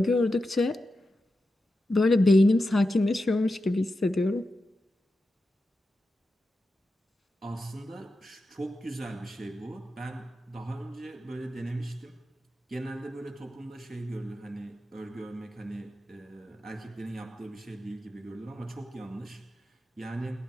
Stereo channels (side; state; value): both; normal; correlation 0.90